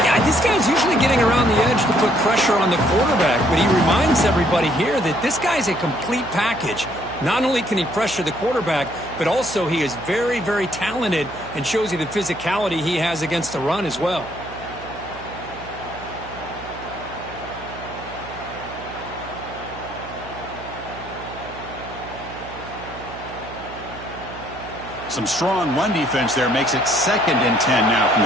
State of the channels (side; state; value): right; noise; hum, 15 dB below the sound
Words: Yeah, this guy's usually getting around the edge to put pressure on the quarterback, but he reminds everybody here that this guy's a complete package. Not only can he pressure the quarterback, but also he is very, very talented and shows you the physicality he has against the run as well. Some strong run defense there makes it 2nd and 10 now from